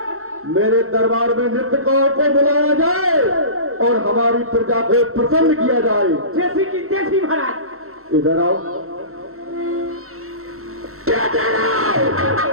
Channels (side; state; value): left; late; 0.63 ms